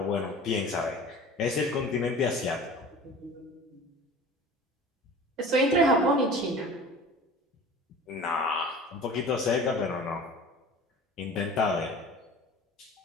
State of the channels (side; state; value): both; normal; correlation 0.41